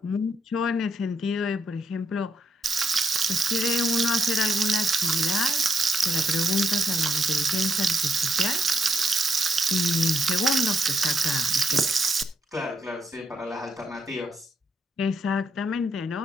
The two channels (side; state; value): both; normal; correlation 0.78